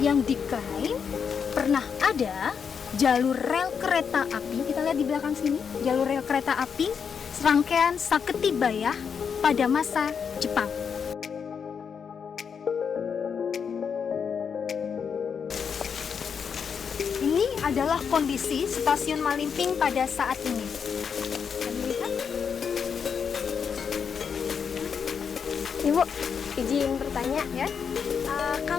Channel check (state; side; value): quieter; right; 6.7 dB